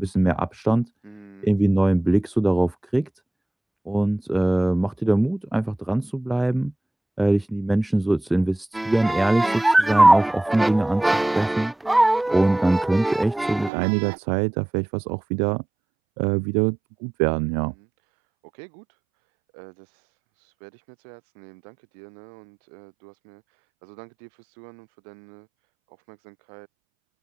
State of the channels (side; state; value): left; drops out; at 13.7 s